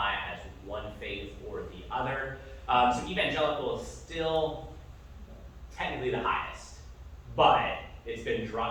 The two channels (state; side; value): identical; both; correlation 1.00